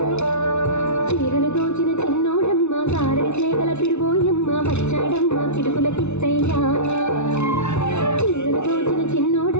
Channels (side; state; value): right; late; 0.82 ms